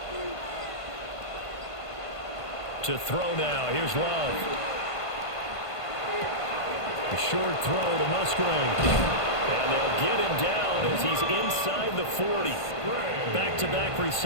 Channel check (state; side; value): late; right; 1.5 ms